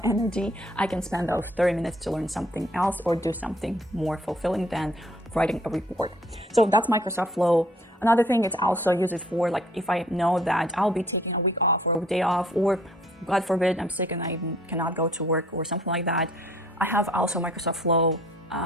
energy. I can spend those 30 minutes to learn something else or do something more fulfilling than writing a report. So that's Microsoft Flow. Another thing, it's also used for like if I know that I'll be taking a week off or a day off, or God forbid I'm sick and I cannot go to work or something like that. I have also Microsoft Flow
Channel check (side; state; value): both; normal; correlation 0.59